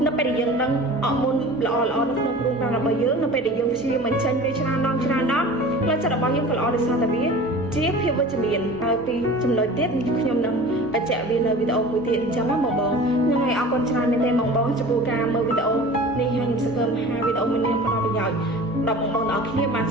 នៅពេលដែលយើងដឹងអរម៉ូនល្អនៅក្នុងខ្លួនប្រាណរបស់យើងនៅពេលដែលយើងព្យាយាមបញ្ចេញវាច្រើនដងផ្លូវចិត្តរបស់យើងក៏ល្អដោយសារតែវាជាភាពវិជ្ជមានហើយពីចំណុចទៀតខ្ញុំនឹងបញ្ជាក់វានៅវីដេអូមួយទៀតអញ្ចឹងបងហ្នឹងហើយអរគុណច្រើនមែនទេបងចំពោះការមើលវីដេអូនេះហើយខ្ញុំសង្ឃឹមថាវីដេអូមួយនេះផ្ដល់ប្រយោជន៍ដល់បងប្អូនទាំងអស់គ្នាបាន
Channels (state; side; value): normal; both; correlation 0.39